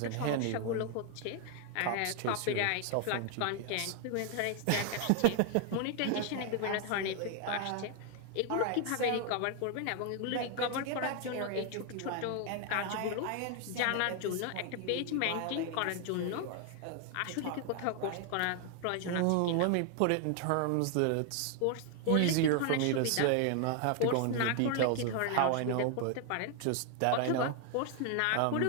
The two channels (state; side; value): different; both; correlation 0.00